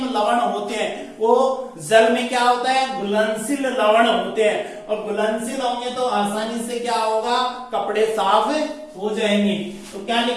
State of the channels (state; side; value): identical; both; correlation 1.00